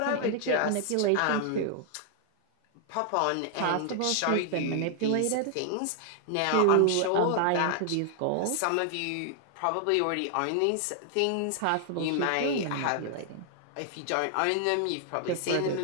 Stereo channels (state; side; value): different; both; correlation 0.00